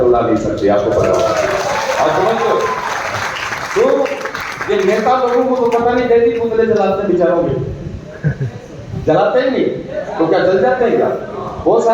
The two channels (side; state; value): both; identical; correlation 1.00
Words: उड़ा नहीं सकती, आपको पता होगा। और समझो, तो ये नेता लोगों को तो पता नहीं कैसी पुतले जलाते हैं बेचारों के, जलाते ही नहीं तो क्या जल जाते हैं क्या? बहुत